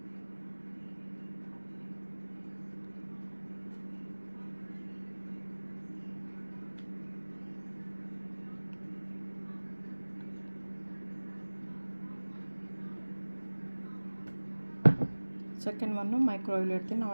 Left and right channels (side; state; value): both; inverted; correlation -1.00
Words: Second one microwave ಇಡ್ತೀನಿ. Now